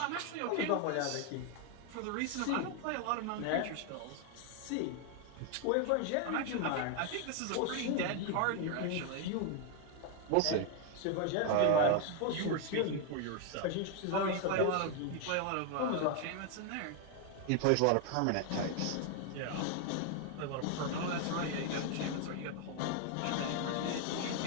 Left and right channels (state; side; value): different; both; correlation 0.01